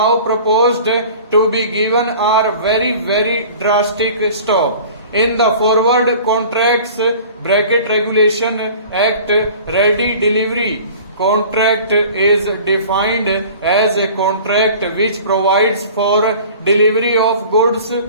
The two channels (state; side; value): inverted; both; correlation -0.44